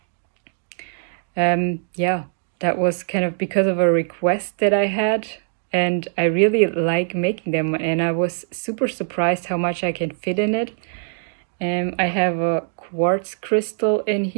That was kind of because of a request that I had, and I really like making them, and I was super surprised how much I can fit in it. I have a quartz crystal in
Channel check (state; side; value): silent; left; digital silence